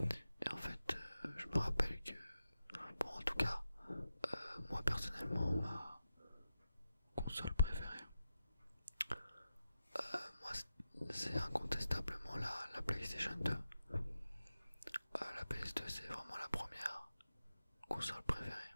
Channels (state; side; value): inverted; both; correlation -0.90